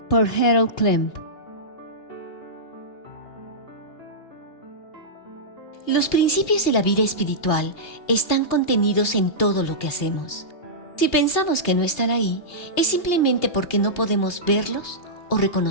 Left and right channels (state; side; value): late; right; 2.7 ms